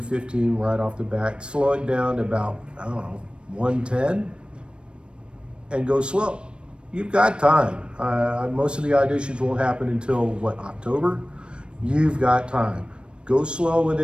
right off the bat. Slow it down to about, 110 and go slow. You've got time. Most of the auditions won't happen until, October? You've got time. Go slow with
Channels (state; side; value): late; left; 0.056 ms